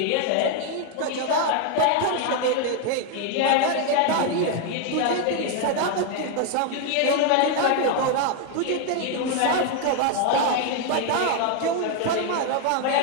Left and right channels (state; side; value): different; both; correlation 0.01